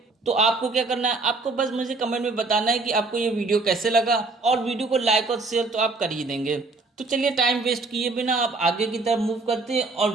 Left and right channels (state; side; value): quieter; left; 3.5 dB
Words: तो आपको क्या करना है, आपको बस मुझे कमेंट में बताना है कि आपको ये वीडियो कैसे लगा और वीडियो को लाइक और शेयर तो आप कर ही देंगे। तो चलिए टाइम वेस्ट किए बिना आप आगे की तरफ मूव करते हैं और